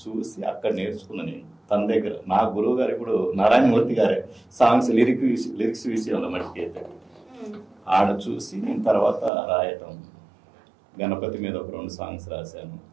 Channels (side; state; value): left; drops out; at 9.3 s